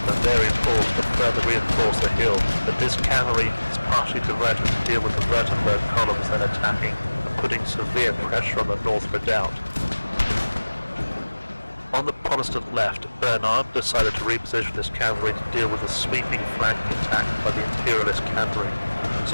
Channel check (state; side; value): inverted; both; correlation -1.00